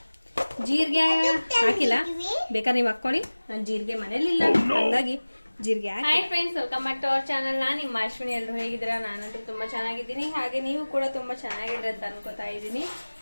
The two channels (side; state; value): both; inverted; correlation -1.00